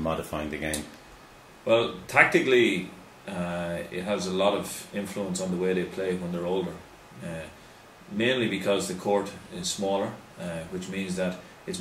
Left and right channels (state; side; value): identical; both; correlation 1.00